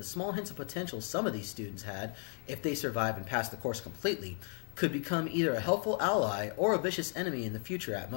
small hints of potential some of these students had, if they survive and pass the course completely, could become either a helpful ally or a vicious enemy in the future at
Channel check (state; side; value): quieter; right; 39.6 dB